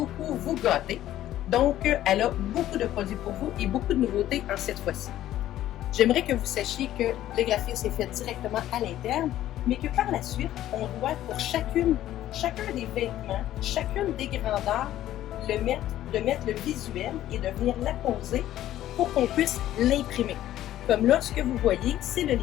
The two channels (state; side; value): quieter; right; 13.2 dB